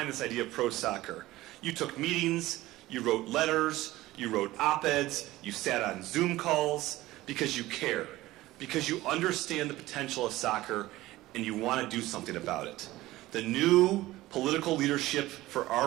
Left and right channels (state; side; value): quieter; left; 17.3 dB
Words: this idea of pro soccer. You took meetings, you wrote letters, you wrote op-eds, you sat on Zoom calls because you care, because you understand the potential of soccer and you want to do something about it. The new political leadership for